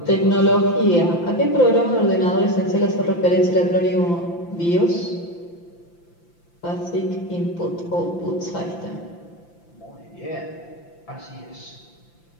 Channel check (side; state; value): right; late; 5.9 ms